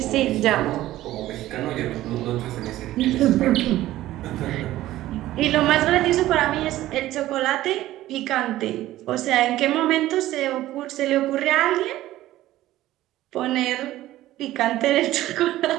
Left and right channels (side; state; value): left; quieter; 15.1 dB